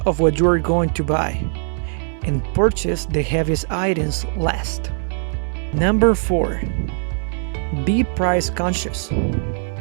of what you are going to buy and purchase the heaviest items last. Number 4, be price conscious.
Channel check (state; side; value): silent; left; 60 dB below the other